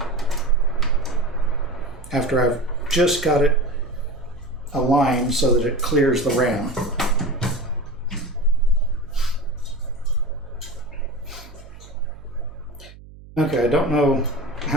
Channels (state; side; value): noise; right; hum, 19 dB below the sound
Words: After I've just got it a line so that it clears the ram. Okay, I don't know